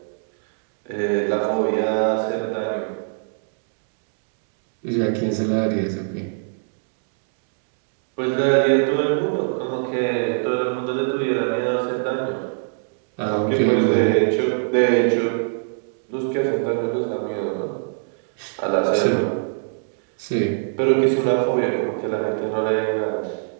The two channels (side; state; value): left; silent; digital silence